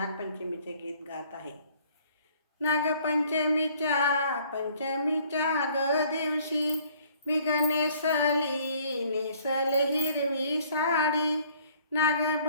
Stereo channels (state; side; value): inverted; both; correlation -0.59